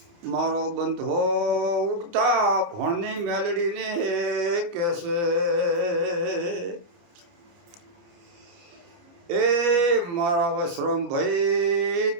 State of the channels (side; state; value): left; late; 29 ms